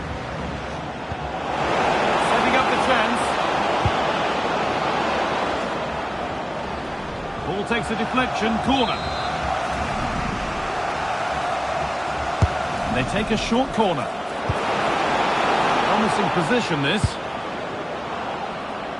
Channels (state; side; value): identical; both; correlation 1.00